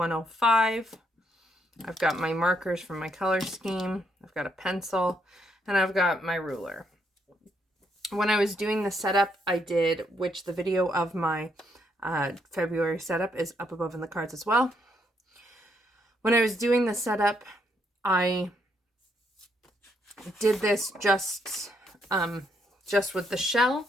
I've got my markers from my color scheme. I've got a pencil, and I've got my ruler. When I was doing the setup, I did, which the video of my February setup is up above in the cards as well. When I was doing the setup, I did this just with the shell,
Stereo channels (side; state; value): both; normal; correlation 0.74